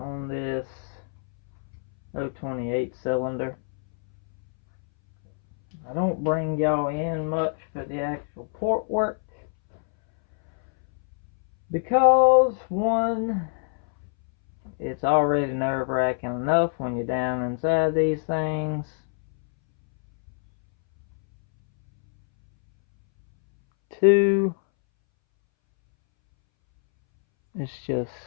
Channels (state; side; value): silent; right; 62 dB below the other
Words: this 028 cylinder. I don't bring y'all in much for the actual port work because one, it's already nerve-wracking enough when you're down inside these things. Two, it's just